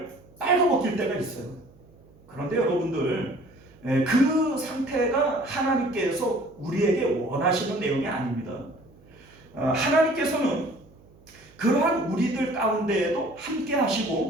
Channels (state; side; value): noise; right; hum, 27 dB below the sound